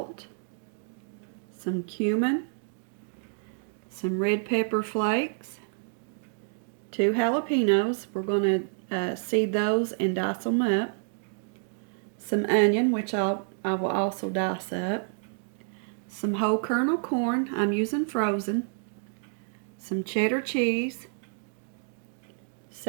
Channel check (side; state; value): left; silent; digital silence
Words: some cumin, some red pepper flakes, 2 jalapeños, we're going to seed those and dice them up, some onion, which I will also dice up, some whole kernel corn, I'm using frozen, some cheddar cheese,